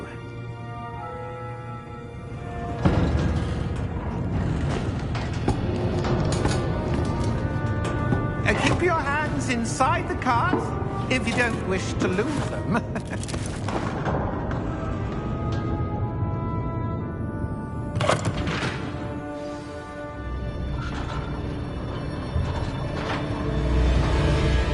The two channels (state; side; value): identical; both; correlation 1.00